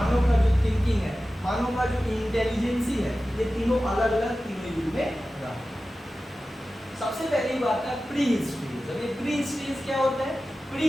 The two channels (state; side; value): normal; both; correlation 0.95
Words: का जो थिंकिंग है, मानव का जो इंटेलिजेंसी है, ये तीनों अलग अलग तीनों युग में रहा। सबसे पहली बात है प्री हिस्ट्री। जब ये प्री हिस्ट्री क्या होता है?